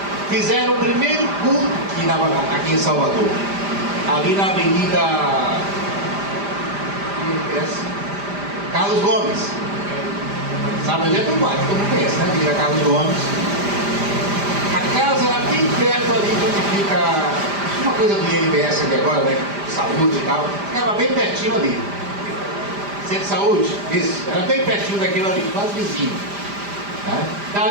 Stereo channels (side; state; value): left; late; 5.0 ms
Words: fizeram o primeiro culto aqui em Salvador, ali na Avenida Carlos Gomes. Sabe onde é que eu bato? Todo mundo conhece, né? Avenida Carlos Gomes. A casa era bem perto ali de onde fica uma coisa do INPS aqui agora, né? Saúde e tal. Ficava bem pertinho ali. Centro de saúde? Isso. Era bem pertinho daquilo ali, quase vizinho.